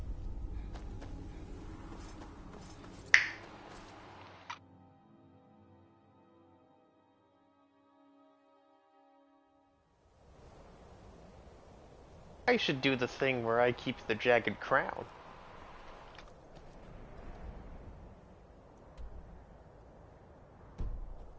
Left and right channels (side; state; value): both; identical; correlation 1.00